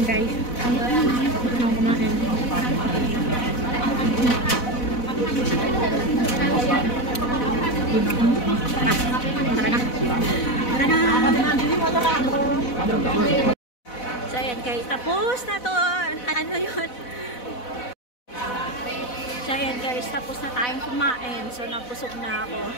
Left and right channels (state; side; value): late; right; 4.1 ms